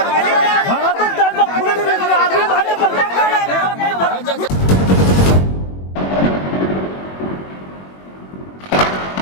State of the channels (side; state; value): right; late; 21 ms